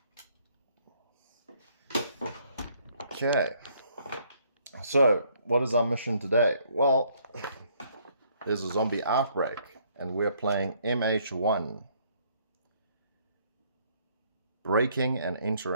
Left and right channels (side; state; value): both; inverted; correlation -0.65